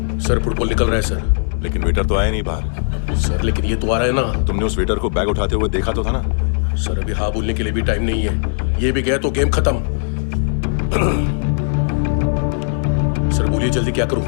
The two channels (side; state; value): right; silent; 67 dB below the other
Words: सर फुटबॉल निकल रहा है सर। लेकिन वेटर तो आया नहीं बाहर। सर लेकिन ये तो आ रहा है ना। तुमने उस वेटर को बैग उठाते हुए देखा तो था ना? सर अभी हाँ बोलने के लिए भी टाइम नहीं है। ये भी गया तो गेम खत्म। सर बोलिए जल्दी क्या करूं?